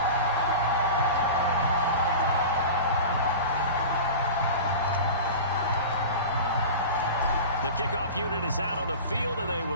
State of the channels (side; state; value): both; inverted; correlation -0.32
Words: The kickoff unit is out on the field, and they